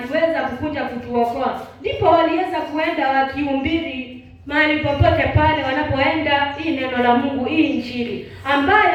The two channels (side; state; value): both; identical; correlation 1.00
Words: kukuja kutuokoa. Ndipo waliweza kuenda wakihubiri mahali popote pale wanapoenda hii neno la Mungu, hii Injili,